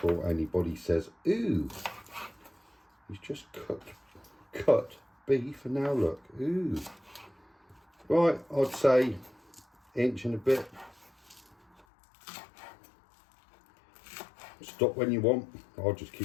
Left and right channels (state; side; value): drops out; right; at 11.9 s